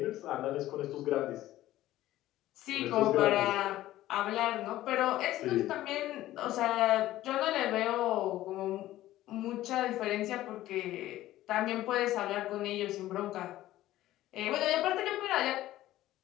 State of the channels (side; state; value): right; quieter; 14.9 dB